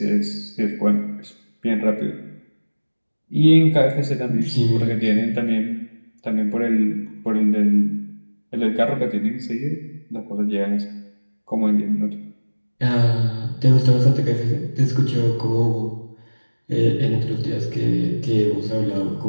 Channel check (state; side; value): inverted; both; correlation -1.00